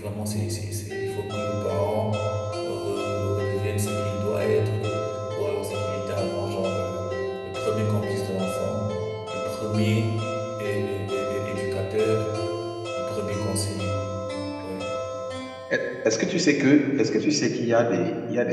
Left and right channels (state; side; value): identical; both; correlation 1.00